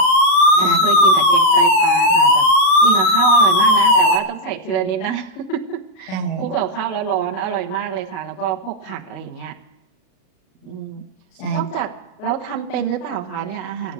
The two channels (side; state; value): right; late; 37 ms